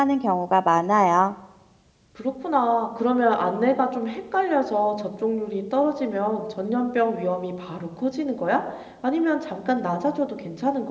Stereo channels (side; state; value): both; identical; correlation 1.00